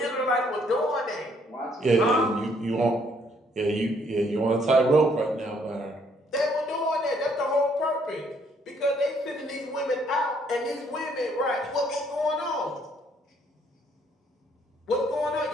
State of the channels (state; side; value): normal; both; correlation 0.67